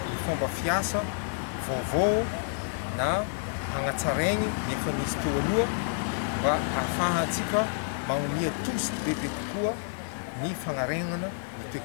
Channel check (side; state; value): right; silent; digital silence